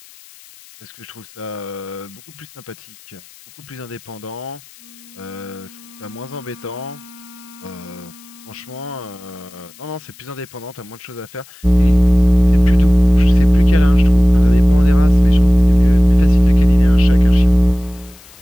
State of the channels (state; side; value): noise; left; hiss, 24 dB below the sound